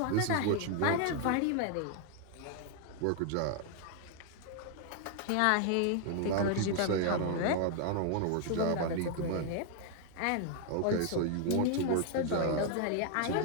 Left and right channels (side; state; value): both; different; correlation 0.00